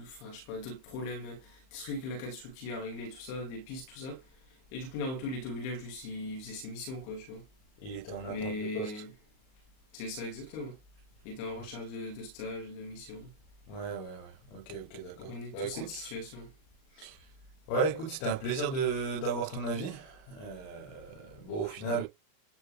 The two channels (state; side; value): late; right; 38 ms